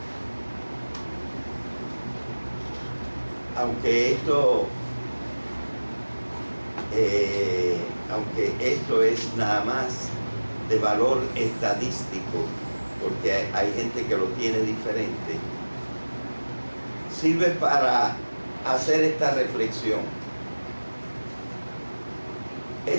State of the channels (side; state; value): both; inverted; correlation -1.00